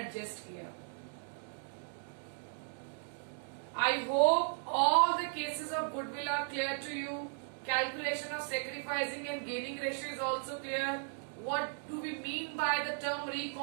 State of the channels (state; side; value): silent; left; digital silence